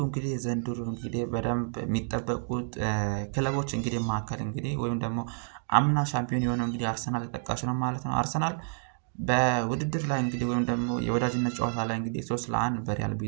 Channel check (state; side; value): silent; left; digital silence